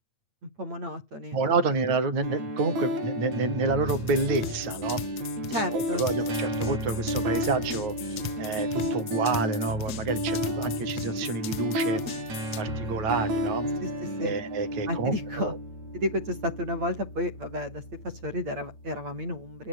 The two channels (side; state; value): left; late; 8.7 ms